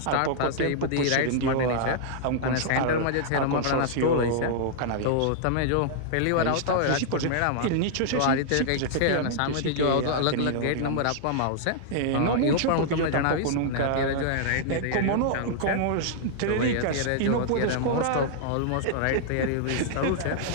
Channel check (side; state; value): both; different; correlation -0.01